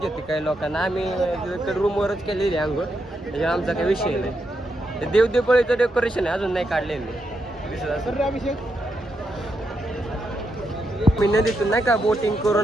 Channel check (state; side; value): normal; both; correlation 0.82